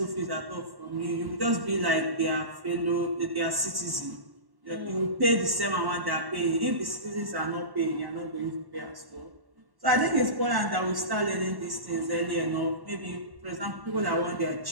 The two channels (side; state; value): left; late; 1.1 ms